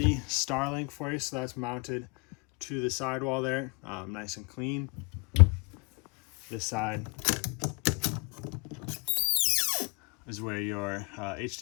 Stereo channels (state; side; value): quieter; right; 31.7 dB